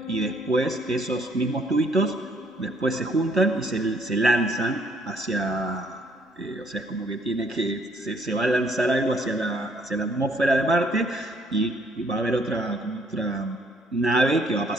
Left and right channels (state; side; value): normal; both; correlation 0.65